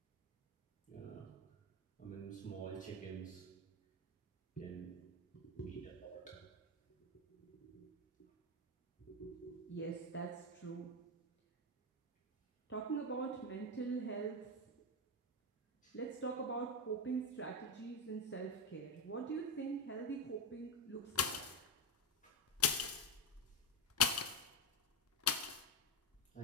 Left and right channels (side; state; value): both; normal; correlation 0.11